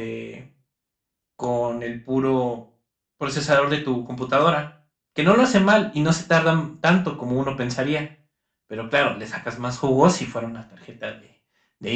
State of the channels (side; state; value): both; identical; correlation 1.00